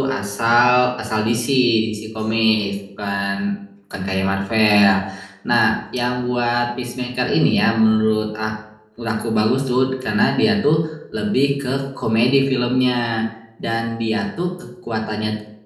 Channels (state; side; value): identical; both; correlation 1.00